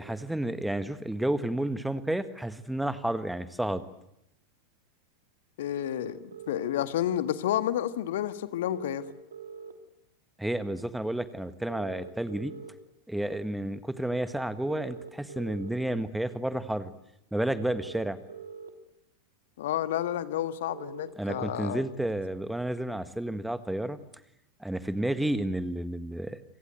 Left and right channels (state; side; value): normal; both; correlation 0.54